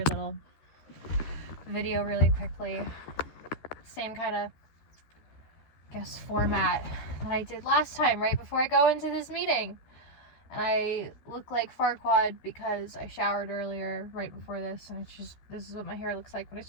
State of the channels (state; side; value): late; right; 13 ms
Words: little video really quickly. Same kind of, I guess, format that I did last time, right before I go into this meeting. And I look like Farquaad because I showered earlier right before this, and it's just, this is what my hair looks like when